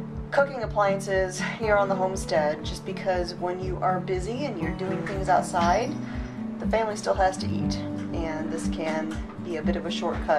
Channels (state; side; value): identical; both; correlation 1.00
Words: cooking appliances here on the homestead, just because when you are busy and you're doing things outside, the family still has to eat, and this can be a bit of a